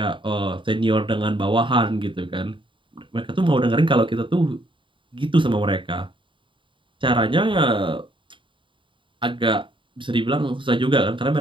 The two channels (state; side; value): late; left; 0.24 ms